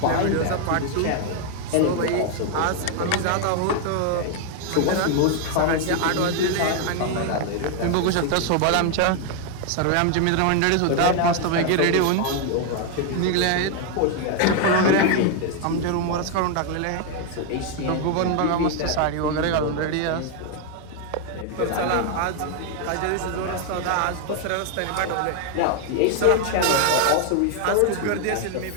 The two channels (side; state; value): both; different; correlation 0.01